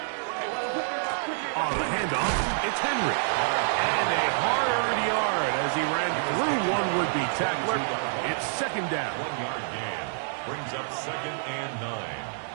On the handoff, it's Henry. And a hard-earned yard as he ran through one would-be tackler. It's 2nd down. 1-yard gain. Brings up 2nd and 9.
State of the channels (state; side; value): silent; left; digital silence